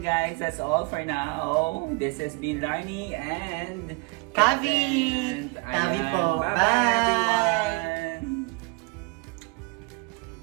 guys, that's all for now. This has been Larny and Kavi! Kavi po. Bye-bye Bye! everyone!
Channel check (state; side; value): quieter; left; 28.6 dB